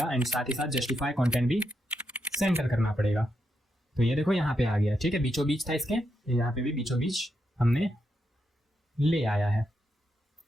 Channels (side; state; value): both; normal; correlation 0.83